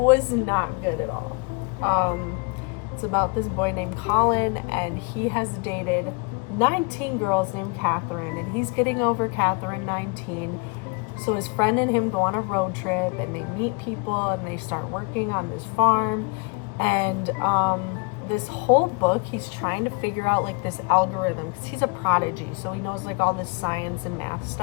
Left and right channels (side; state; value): right; quieter; 30.9 dB